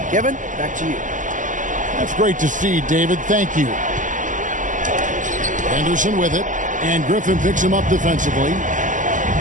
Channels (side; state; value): left; late; 0.37 ms